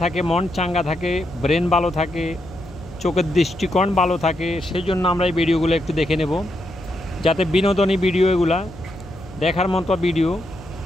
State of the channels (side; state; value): left; noise; hum, 19 dB below the sound